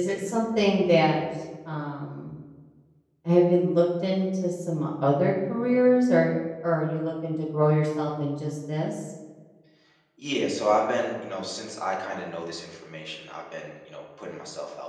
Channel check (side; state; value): both; identical; correlation 1.00